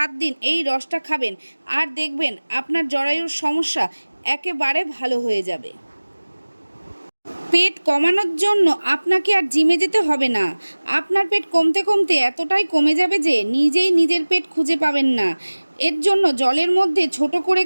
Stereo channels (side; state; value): both; inverted; correlation -1.00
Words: দিন এই রসটা খাবেন আর দেখবেন আপনার জরায়ুর সমস্যা একেবারে ভালো হয়ে যাবে। পেট কমানোর জন্য আপনাকে আর জিমে যেতে হবে না। আপনার পেট কমতে কমতে এতটাই কমে যাবে যে নিজেই নিজের পেট খুঁজে পাবেন না। এর জন্য জলের মধ্যে ছোট করে